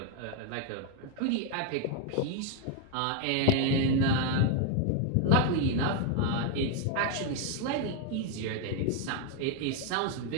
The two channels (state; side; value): different; both; correlation 0.01